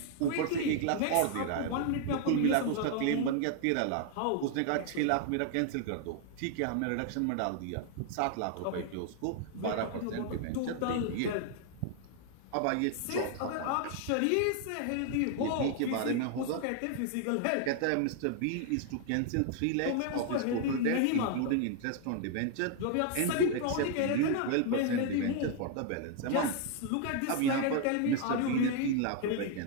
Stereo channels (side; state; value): both; different; correlation 0.00